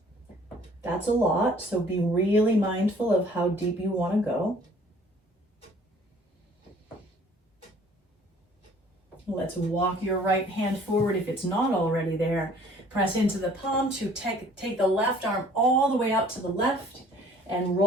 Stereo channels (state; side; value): normal; both; correlation 0.55